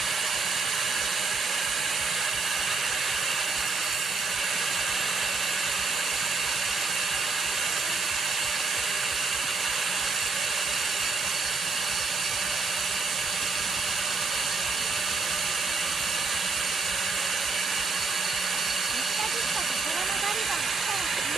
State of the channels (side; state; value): left; quieter; 4.5 dB